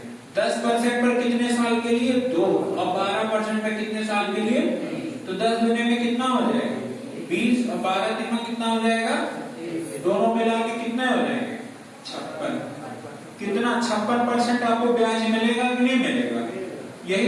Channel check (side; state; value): both; identical; correlation 1.00